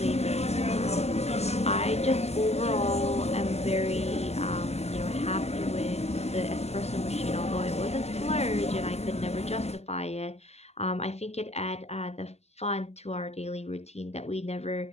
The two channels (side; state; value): right; late; 0.31 ms